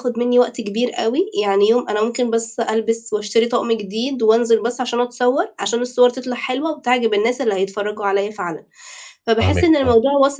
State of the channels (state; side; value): identical; both; correlation 1.00